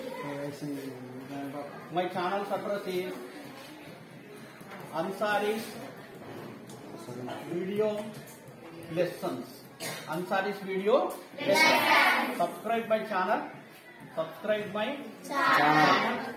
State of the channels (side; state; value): both; identical; correlation 1.00